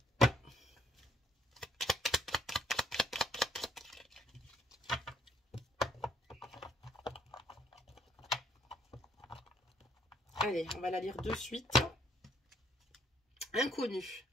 Allez, on va la lire de suite. Inconnu.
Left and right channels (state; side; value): normal; both; correlation 0.67